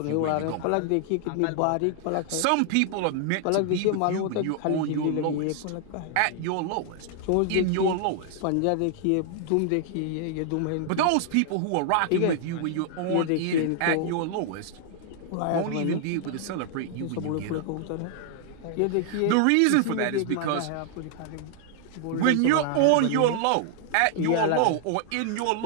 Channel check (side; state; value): both; different; correlation 0.00